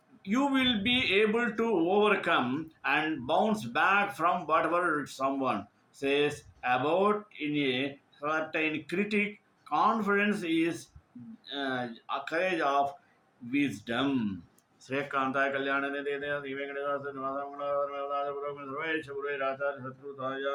You will be able to overcome and bounce back from whatever someone says about in a certain critic. Confidence is a courage of wisdom. श्रेयकांताय कल्याण निधे श्री वेंकटेश्वर निवास मंगल सर्वेश गुरु राजा शत्रु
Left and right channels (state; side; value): identical; both; correlation 1.00